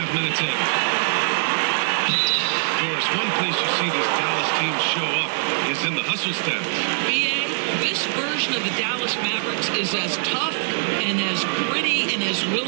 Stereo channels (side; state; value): left; silent; 58 dB below the other